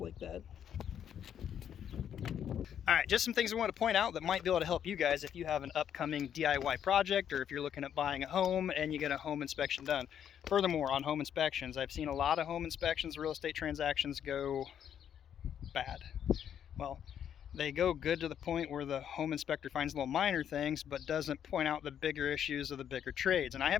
like that. Alright, just some things I want to point out that might be able to help you guys if you have an upcoming DIY project, or if you're looking at buying a home and you get a home inspection done. Furthermore, on home inspections, I've seen a lot of home inspections, real estate transactions go bad. Well, they go good to the point where the home inspector finds little minor things but doesn't point out the bigger issues of the bigger trades. And I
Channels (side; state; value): right; quieter; 9.2 dB